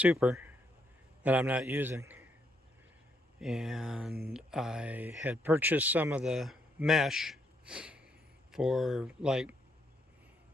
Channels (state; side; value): normal; both; correlation 0.75